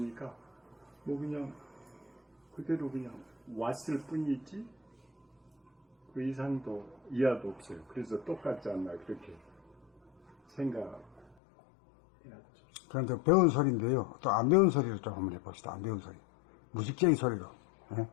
뭐 그냥 그대로 그냥 왔을 뿐이지 그 이상도 이하도 없어요. 그래서 똑같지 않나 그렇게 생각해야죠. 그런데 배운 소리인데요. 또 안 배운 소리를 좀 한번 해봅시다. 안 배운 소리. 무식쟁이 소리로. 예?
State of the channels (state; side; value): drops out; right; at 11.4 s